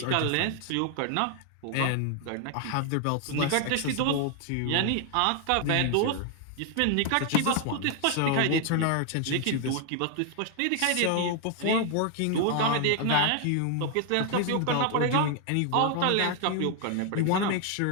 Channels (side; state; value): both; different; correlation 0.00